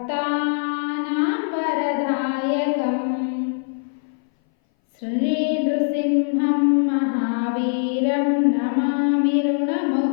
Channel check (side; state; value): right; silent; 60 dB below the other